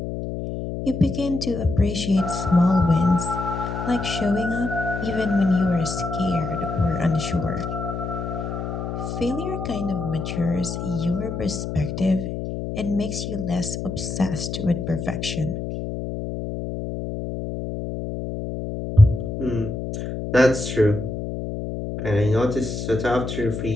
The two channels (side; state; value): left; noise; hum, 5 dB below the sound